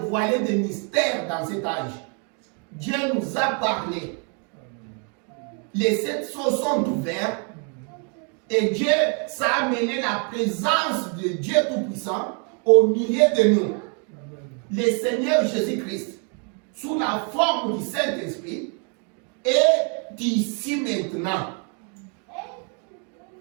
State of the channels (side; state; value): left; quieter; 38.3 dB